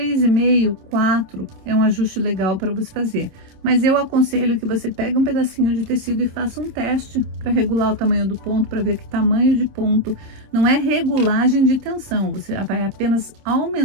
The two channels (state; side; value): late; left; 27 ms